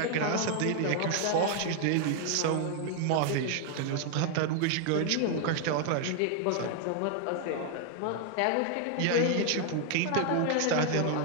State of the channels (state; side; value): different; both; correlation 0.00